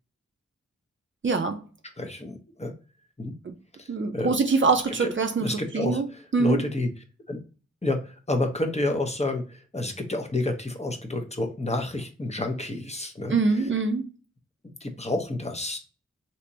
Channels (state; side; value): normal; both; correlation 0.50